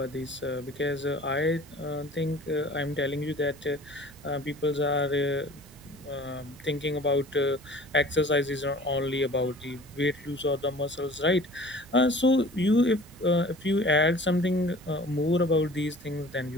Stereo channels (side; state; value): both; normal; correlation 0.46